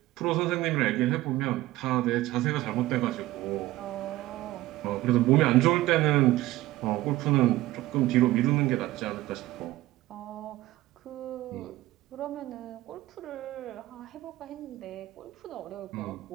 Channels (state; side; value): quieter; left; 17.1 dB